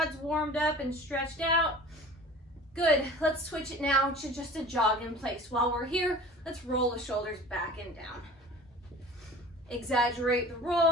warmed up and stretched out. Good, let's switch it now to just a jog in place. While we're here, let's roll the shoulders back and down. Exaggerate the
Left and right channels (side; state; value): both; normal; correlation 0.42